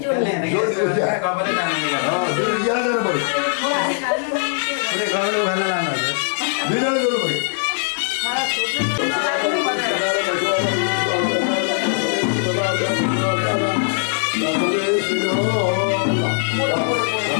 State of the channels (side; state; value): right; silent; digital silence